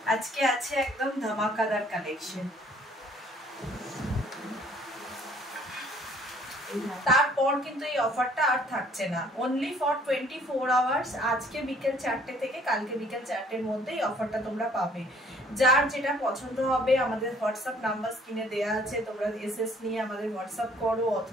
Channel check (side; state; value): both; normal; correlation 0.59